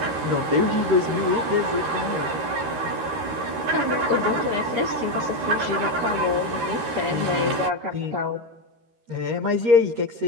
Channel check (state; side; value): late; left; 13 ms